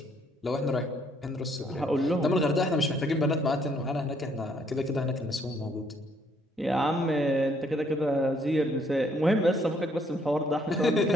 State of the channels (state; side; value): normal; both; correlation 0.67